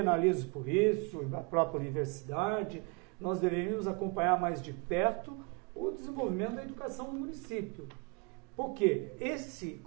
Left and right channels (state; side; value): quieter; left; 32.4 dB